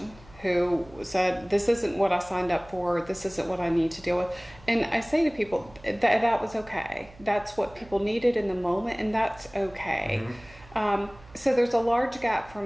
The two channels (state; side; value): noise; right; hum, 23 dB below the sound